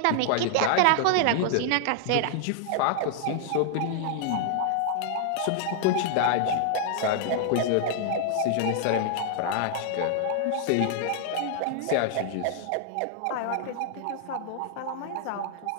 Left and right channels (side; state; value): both; different; correlation 0.00